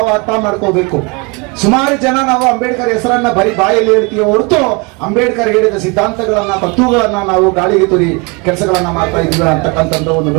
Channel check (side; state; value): left; quieter; 29.6 dB